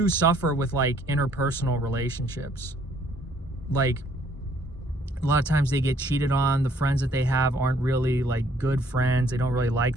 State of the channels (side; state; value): both; normal; correlation 0.63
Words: suffer with like interpersonal relationships. Like a lot of times they get cheated on. The friends that they have aren't really like good friends. They don't really like